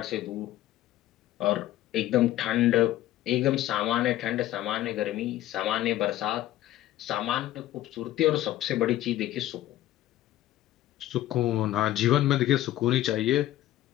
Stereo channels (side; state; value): right; quieter; 14.2 dB